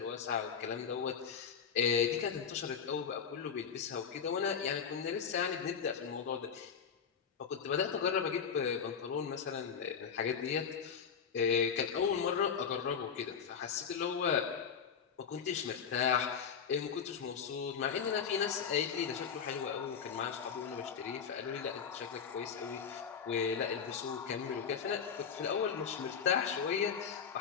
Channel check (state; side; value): quieter; right; 6.9 dB